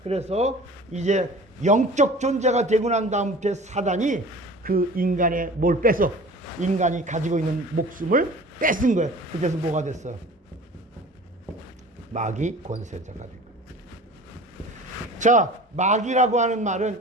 그래서 이제 영적 존재가 되고 난 다음부터 사단이 그 인간의 뭘 뺏어? 인간이 가지고 있는 목숨을 뺏은 거예요. 그래서 뭐가 됐어요? 마귀 권세자가 된 거예요. 자, 마귀라고 하는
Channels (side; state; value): both; normal; correlation 0.42